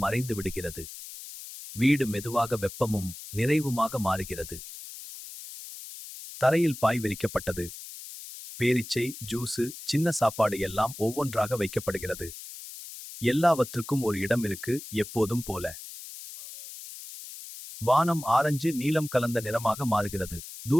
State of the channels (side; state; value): left; noise; hiss, 13 dB below the sound